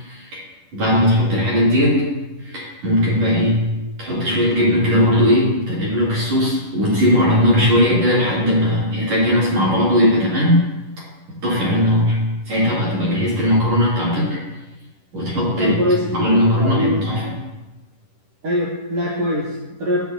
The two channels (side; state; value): left; late; 10 ms